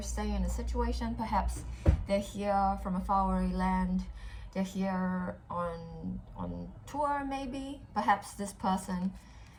staying in a situation. Perhaps they're here from a faraway land. They're here on tour, maybe. Perhaps this person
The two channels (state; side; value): identical; both; correlation 1.00